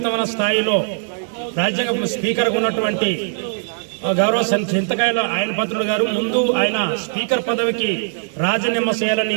స్థాయిలో రాజ్యాంగ స్పీకర్గా ఉన్నటువంటి గౌరవ చింతకాయల ఆయన పత్రుడు గారు ముందు ఆయన స్పీకర్ పదవికి రాజీనామా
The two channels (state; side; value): silent; left; digital silence